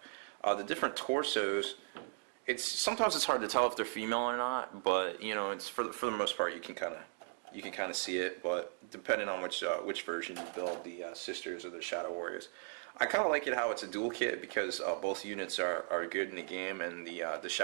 The different torsos. Sometimes it's hard to tell if they're female or not, but it's for the most part you can kind of see it. But depending on which version you build, the Sisters or the Shadow Warriors. I kind of like it how it's a dual kit because both units are good in the game, and the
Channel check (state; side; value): silent; left; 53 dB below the other